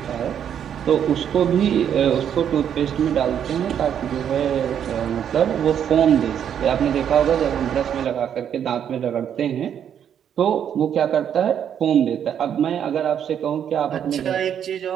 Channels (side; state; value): left; quieter; 9.0 dB